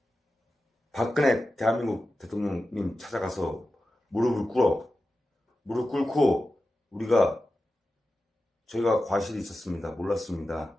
박근혜 대한민국 대통령님 찾아가서 무릎 꿇고 저희가 과실이 있었습니다. 몰랐습니다.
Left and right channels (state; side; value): normal; both; correlation 0.93